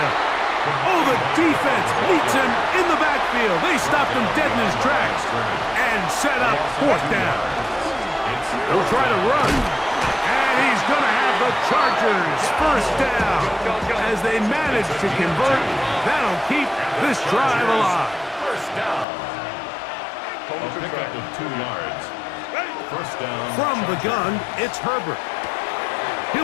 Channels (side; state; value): right; drops out; at 19.1 s